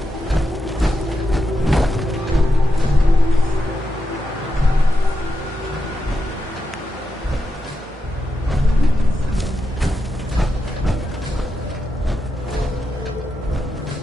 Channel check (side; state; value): both; normal; correlation 0.87